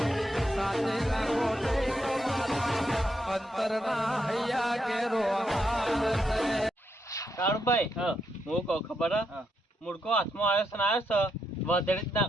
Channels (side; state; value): both; normal; correlation 0.80